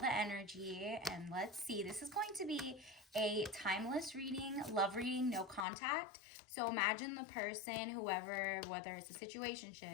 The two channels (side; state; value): right; drops out; at 5.7 s